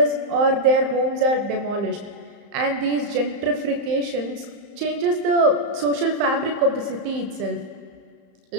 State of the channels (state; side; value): late; left; 35 ms